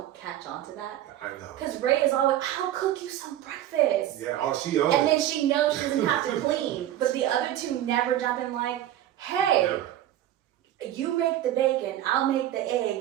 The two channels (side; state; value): left; quieter; 12.6 dB